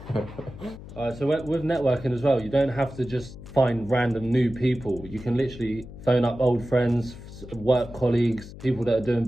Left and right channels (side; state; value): left; noise; hum, 15 dB below the sound